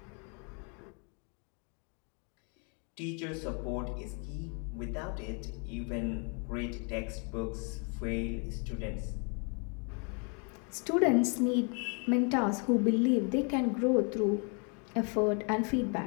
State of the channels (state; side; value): quieter; right; 36.9 dB